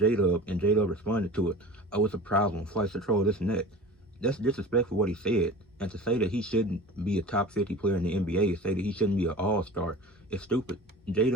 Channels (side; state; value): both; normal; correlation 0.37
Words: and J-Dub responded to it, oh, it's a problem. Flight's a troll, this and that. That's disrespectful what he said. And to say that he shouldn't be a top 50 player in the NBA, say that he shouldn't be an all-star, is stupid.